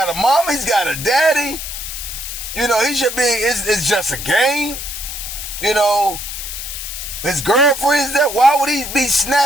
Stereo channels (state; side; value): noise; left; hiss, 7 dB below the sound